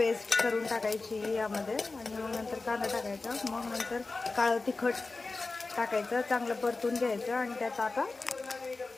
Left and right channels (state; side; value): quieter; right; 3.6 dB